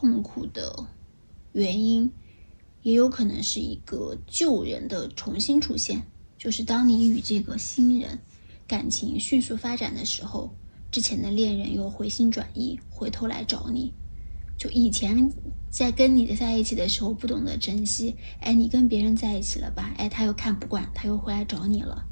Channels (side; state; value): both; inverted; correlation -1.00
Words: 苦的原因，也有可能是一个旧人的重新出现，就是当你与这个新人感情迅速发展的时候，之前的恋人又回心转意，回头来找你。就以前在跟你在一起的时候不懂得珍惜，你跟别人在一起了吧，他又看不惯，他又回来找你了，